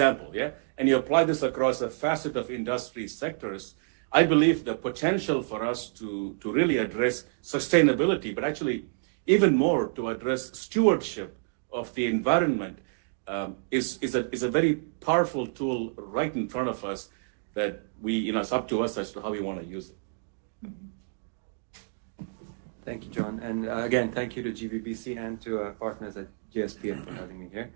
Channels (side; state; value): left; silent; digital silence